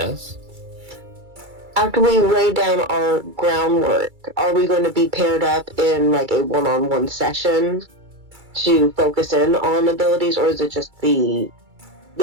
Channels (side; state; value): left; late; 2.3 ms